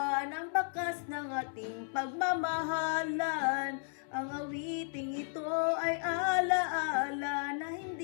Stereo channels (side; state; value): right; silent; 55 dB below the other